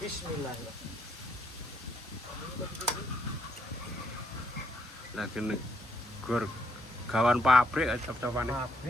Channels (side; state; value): both; normal; correlation 0.74